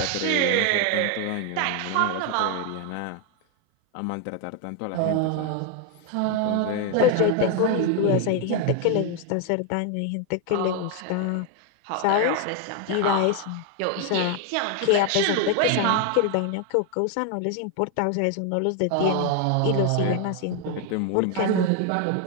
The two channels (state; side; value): different; both; correlation 0.01